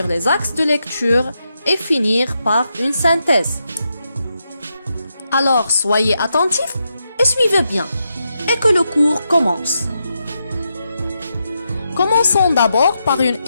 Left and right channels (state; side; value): inverted; both; correlation -0.84